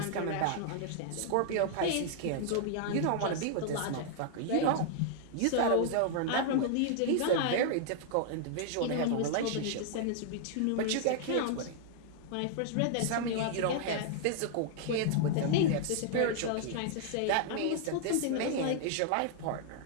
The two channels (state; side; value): different; both; correlation -0.01